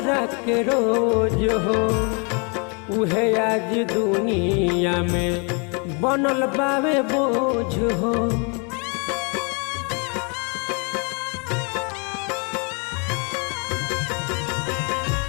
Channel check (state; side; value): quieter; right; 35.3 dB